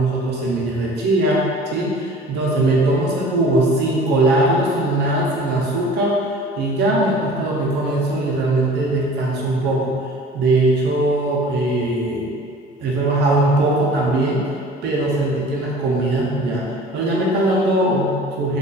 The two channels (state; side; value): normal; both; correlation 0.45